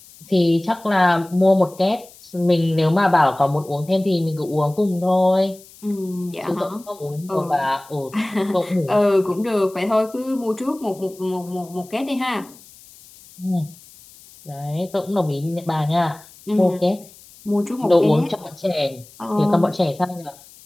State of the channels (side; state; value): left; noise; hiss, 23 dB below the sound